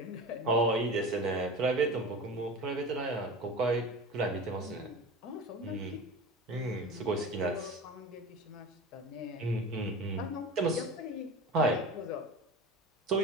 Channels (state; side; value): normal; both; correlation 0.32